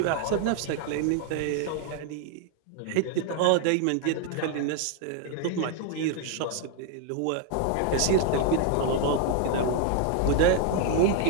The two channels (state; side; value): different; both; correlation 0.00